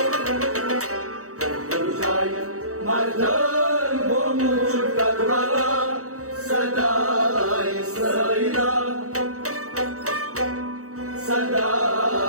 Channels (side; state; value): left; late; 0.65 ms